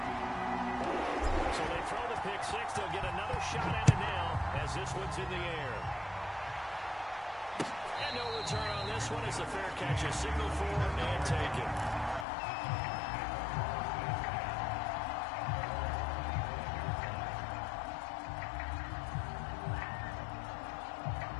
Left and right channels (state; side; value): drops out; right; at 12.2 s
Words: So they throw the pick six. They'll get another shot at it now as this one's in the air. And no return on this one. It's a fair catch, a signal for and taken.